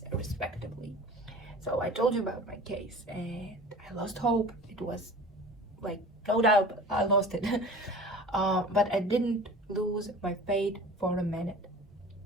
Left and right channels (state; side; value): normal; both; correlation 0.40